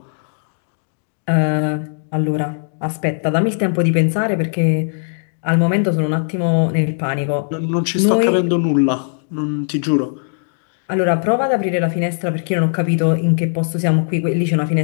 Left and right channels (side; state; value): right; silent; digital silence